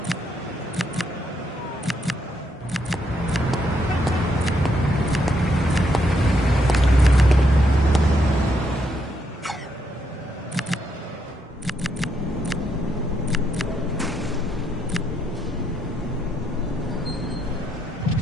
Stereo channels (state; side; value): normal; both; correlation 0.77